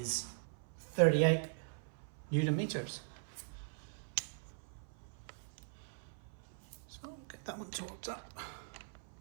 38 Newton meters. So we'll get that one torqued up.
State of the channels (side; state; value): left; silent; 51 dB below the other